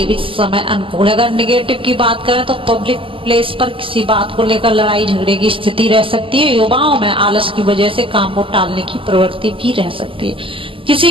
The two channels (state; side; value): late; left; 0.25 ms